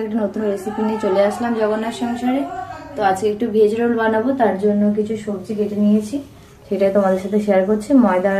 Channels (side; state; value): both; identical; correlation 1.00